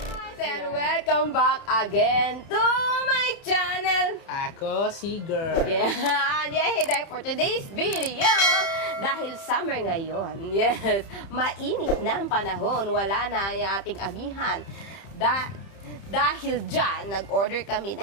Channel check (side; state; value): right; late; 30 ms